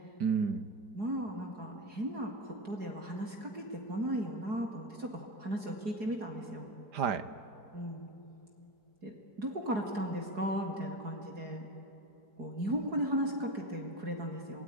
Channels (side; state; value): left; late; 4.7 ms